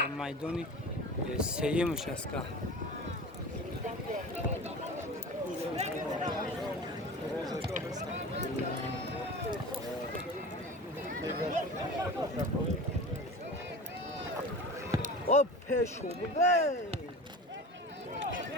میدان سیمش است که او پیشو بده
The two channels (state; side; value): normal; both; correlation 0.34